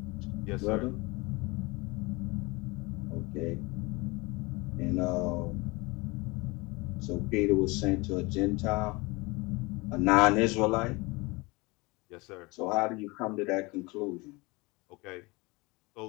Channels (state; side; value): quieter; right; 25.1 dB